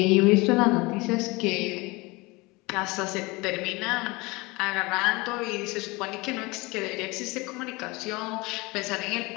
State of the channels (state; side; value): quieter; right; 24.1 dB